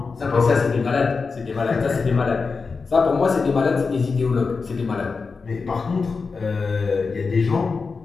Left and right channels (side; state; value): right; quieter; 4.7 dB